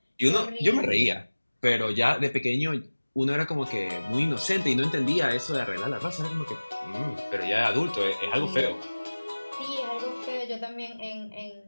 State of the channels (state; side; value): inverted; both; correlation -1.00